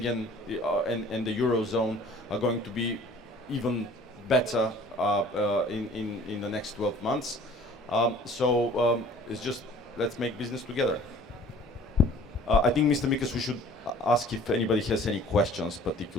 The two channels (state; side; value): normal; both; correlation 0.50